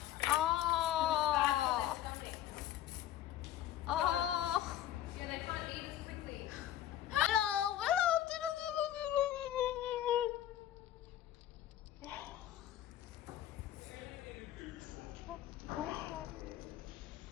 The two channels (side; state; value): right; quieter; 12.0 dB